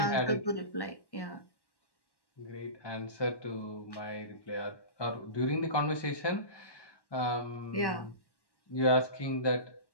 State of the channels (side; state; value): right; late; 1.1 ms